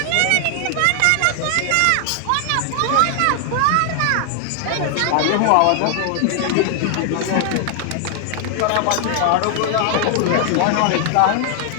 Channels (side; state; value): both; different; correlation 0.00